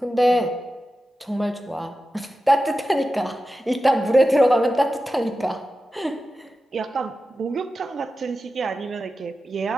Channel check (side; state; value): both; normal; correlation 0.92